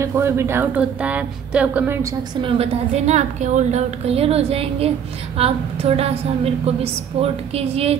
कोई भी डाउट होता है तो आप कमेंट सेक्शन में बता देना, आपके ऑल डाउट क्लियर हो जाएंगे। आप थोड़ा सा मेरे को भी सपोर्ट कीजिए,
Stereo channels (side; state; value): left; quieter; 8.0 dB